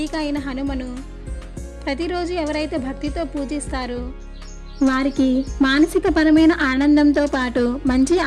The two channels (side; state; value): both; identical; correlation 1.00